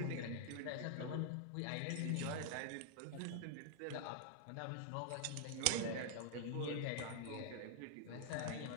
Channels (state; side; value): different; both; correlation -0.01